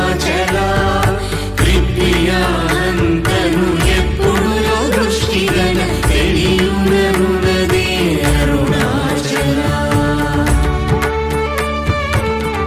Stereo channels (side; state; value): both; identical; correlation 1.00